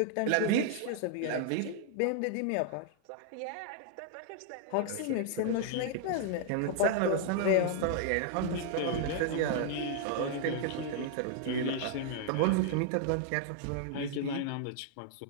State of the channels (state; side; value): different; both; correlation -0.01